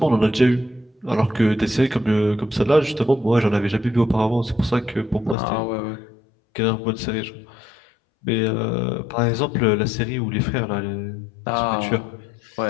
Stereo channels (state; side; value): drops out; right; at 5.4 s